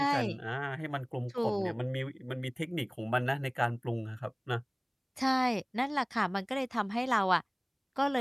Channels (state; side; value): identical; both; correlation 1.00